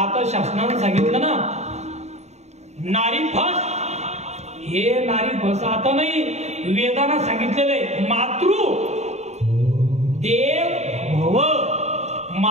आता शासनाने सांगितलं ना, नारी फस. हे नारी फस आता नाही, वेदांना सांगितलेले मातृ देव भव.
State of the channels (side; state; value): left; late; 0.32 ms